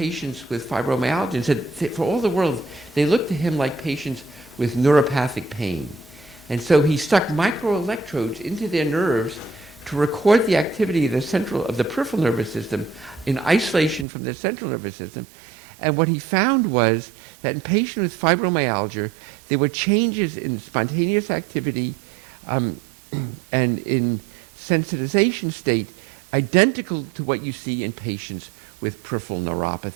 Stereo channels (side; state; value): left; drops out; at 14.1 s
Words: with fibromyalgia and said, for all the world, they looked to him like patients with neuropathic pain. And so he stuck microelectrodes into their nerves to record the activity of the peripheral nervous system in isolation from the central nervous system. And what he found was that in patients with fibromyalgia, there were changes in spontaneous activity and in sensitization state identical to what you see in patients with peripheral